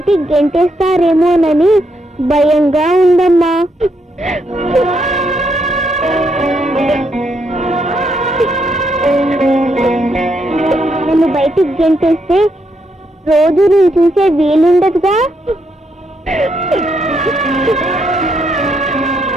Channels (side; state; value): both; normal; correlation 0.77